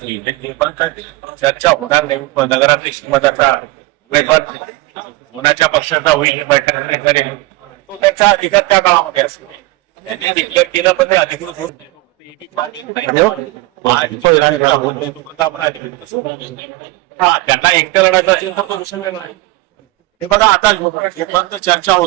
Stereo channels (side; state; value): left; quieter; 19.9 dB